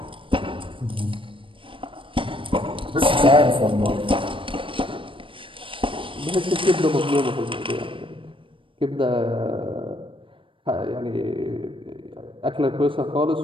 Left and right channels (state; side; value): late; left; 0.25 ms